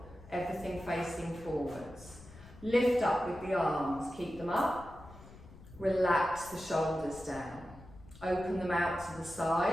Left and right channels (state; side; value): noise; left; rumble, 19 dB below the sound